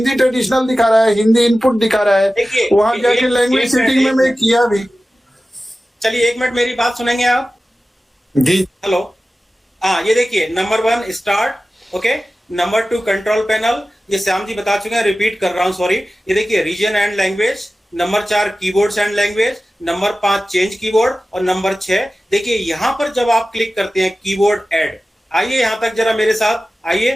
ट्रेडिशनल दिखा रहा है, हिंदी इनपुट दिखा रहा है, वहां जाके लैंग्वेज सेटिंग में मैं किया भी। चलिए 1 मिनट मेरी बात सुनेंगे आप जी। हेलो, हाँ ये देखिए, number 1 start, okay, number 2 control panel, ये श्याम जी बता चुके हैं, रिपीट कर रहा हूं सॉरी। ये देखिए region and language, number 4 keyboards and language, number 5 change keyboard, और नंबर 6 देखिए यहां पर जब आप क्लिक करते हैं कीबोर्ड ऐड, आइए यहां तक जरा मेरे साथ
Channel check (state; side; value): normal; both; correlation 0.95